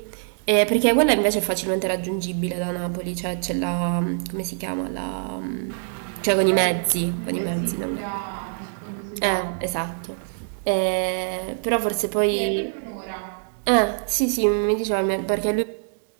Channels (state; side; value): silent; left; digital silence